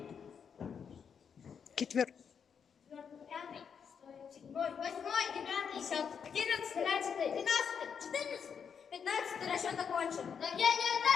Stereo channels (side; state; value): right; quieter; 6.9 dB